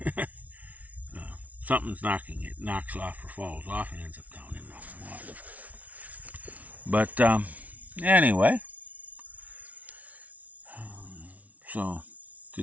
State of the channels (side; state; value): left; late; 0.071 ms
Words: Something's knocking it, knocks off or falls off and ends up down in the water. But anyway, so to